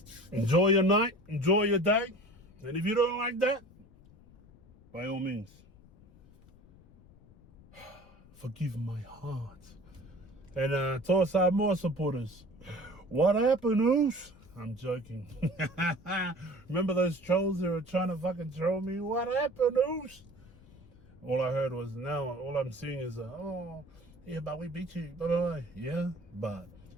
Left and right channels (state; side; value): noise; left; rumble, 24 dB below the sound